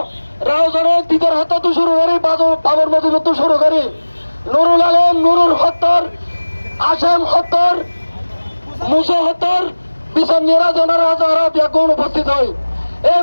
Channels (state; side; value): inverted; both; correlation -1.00